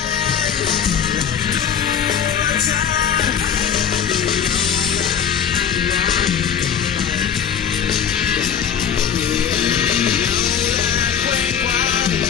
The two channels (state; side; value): quieter; right; 8.1 dB